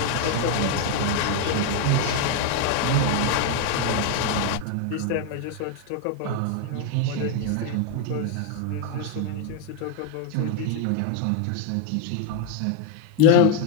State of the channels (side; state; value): both; different; correlation 0.01